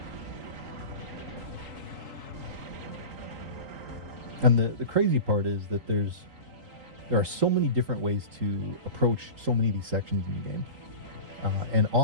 And the crazy part is that there are so many different ways to approach so many of these sections in the game. And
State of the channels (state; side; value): late; left; 3.8 ms